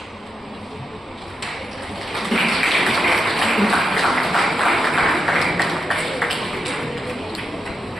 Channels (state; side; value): normal; both; correlation 0.86